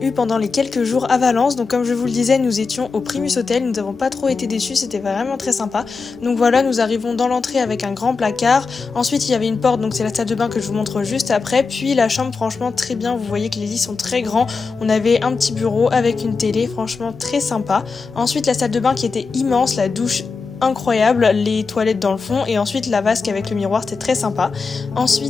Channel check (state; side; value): quieter; right; 4.6 dB